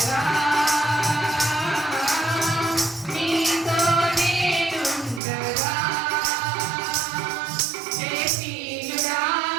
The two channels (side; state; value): left; drops out; at 5.2 s